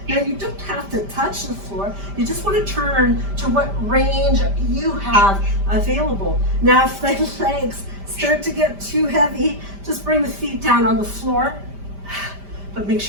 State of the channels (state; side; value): late; left; 5.0 ms